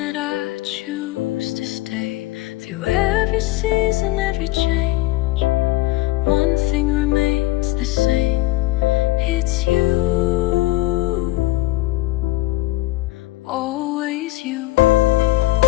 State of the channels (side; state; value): right; quieter; 18.2 dB